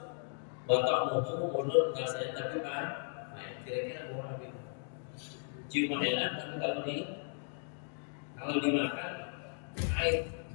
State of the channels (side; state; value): right; silent; 54 dB below the other